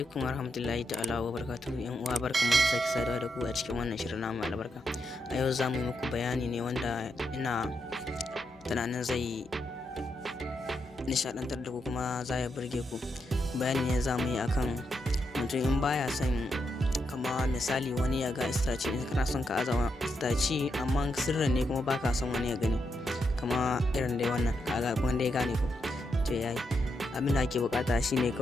warahmatullahi ta'ala wa barakatuhu. Yan uwa, barkamu da sake saduwa da ku a cikin wannan shirin namu albarka. A yau za mu yi muku bayani ne wanda ina tunanin zai nishadantar da ku kuma za ya burge ku. Bayani ne za mu yi akan mutum in baya son, kama misali wani ya ga istaci, in kana son ka azawa istaci amma sirrin ne kuma baka son wani ya gani, kama irin dai wannan kaga wanda ya gane ku to yayi. Abin da ake bukata shine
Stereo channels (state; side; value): normal; both; correlation 0.82